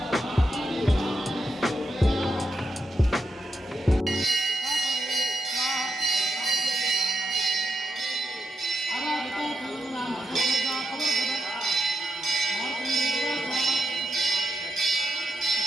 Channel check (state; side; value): normal; both; correlation 0.84